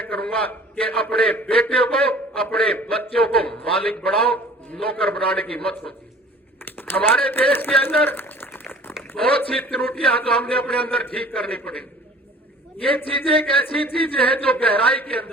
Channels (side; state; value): both; normal; correlation 0.48